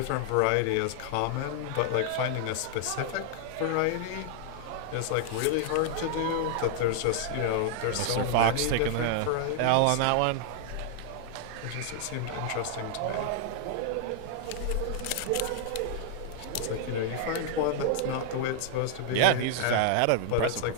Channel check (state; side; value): different; both; correlation -0.01